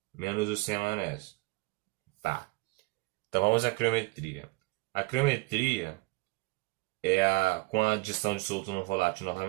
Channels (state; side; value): quieter; left; 25.0 dB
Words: menos o sem a maionese. Tá. Então vamos à criometria. A criometria é com a adição de soluto não volátil